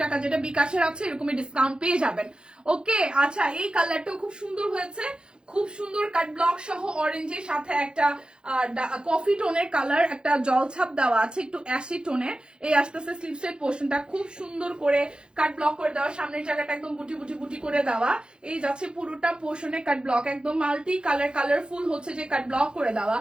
টাকা যেটা বিকাশের আছে এরকমই ডিসকাউন্ট পেয়ে যাবেন। ওকে, আচ্ছা, এই কালারটাও খুব সুন্দর হয়েছে, খুব সুন্দর কাট ব্লক সহ অরেঞ্জের সাথে একটা কফি টোনের কালার, একটা জলছাপ দেওয়া আছে একটু অ্যাসি টোনের। এই আস্তে আস্তে স্লিভসের পোর্শনটা খুব সুন্দর করে কাট ব্লক করে দেওয়া, সামনের জায়গাটা একদম বুটি বুটি বুটি করে দেওয়া। এই যাচ্ছে পুরোটা পোর্শনে কাট ব্লক, একদম মাল্টি কালার কালারফুল হচ্ছে যে কাট ব্লক করে দেওয়া।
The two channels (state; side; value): late; left; 0.050 ms